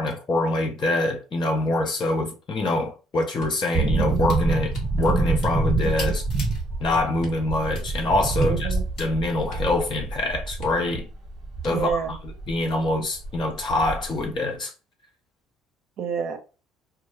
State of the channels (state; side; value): normal; both; correlation 0.69